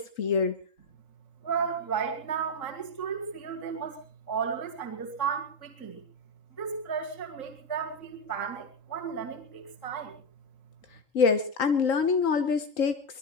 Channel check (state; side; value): late; right; 3.8 ms